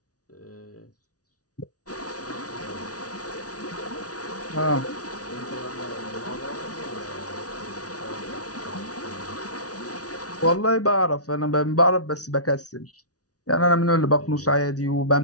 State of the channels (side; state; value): right; late; 0.68 ms